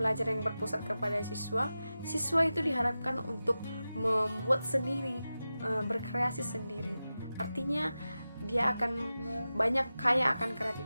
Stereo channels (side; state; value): both; inverted; correlation -0.94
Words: yang berpusat kepada siswa itu diharapkan untuk membuat sendiri, berkreasi sendiri. Artinya dia akan banyak kaya akan